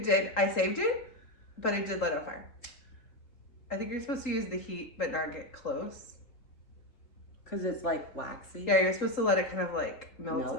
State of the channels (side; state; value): right; late; 3.7 ms